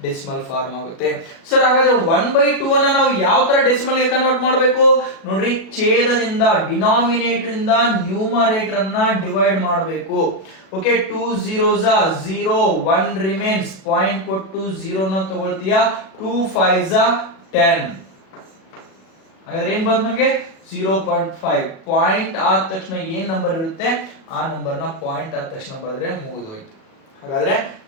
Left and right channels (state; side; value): late; right; 37 ms